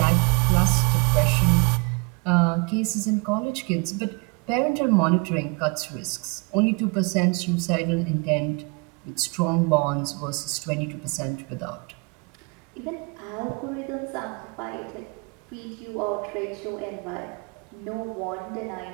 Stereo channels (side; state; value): left; quieter; 31.1 dB